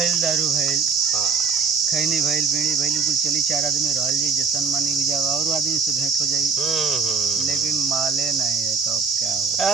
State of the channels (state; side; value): quieter; left; 5.4 dB